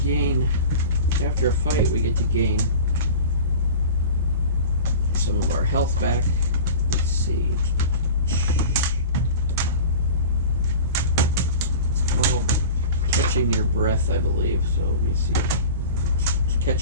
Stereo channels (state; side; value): inverted; both; correlation -0.35